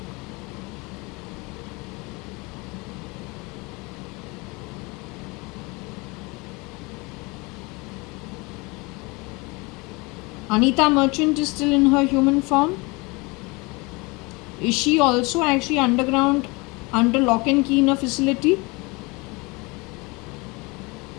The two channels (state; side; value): quieter; right; 26.4 dB